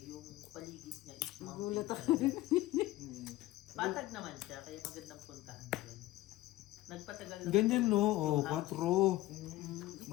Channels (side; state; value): right; quieter; 17.0 dB